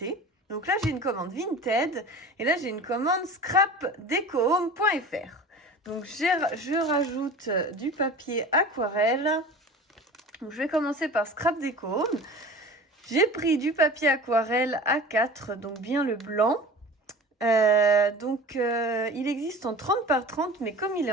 Donc là, j'ai une commande Vinted et là, j'ai une commande scrapdecohome.fr. Donc je rajoute du papier aquarelle. Donc, je vais commencer par Scrap Deco Home. J'ai pris du papier aquarelle A4, donc bien le blanc. Il existe en 30 par 30, mais comme il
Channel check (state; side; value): normal; both; correlation 0.37